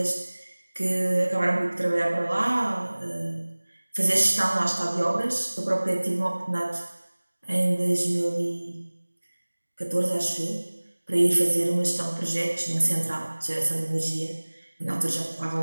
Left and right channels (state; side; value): inverted; both; correlation -1.00